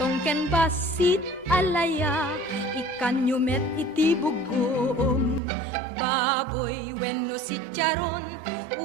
ken basit alaya ikan yumet iti bugom baboy wenno si charon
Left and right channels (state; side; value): drops out; left; at 5.4 s